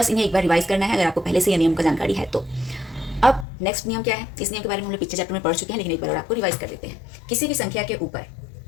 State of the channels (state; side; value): drops out; right; at 3.5 s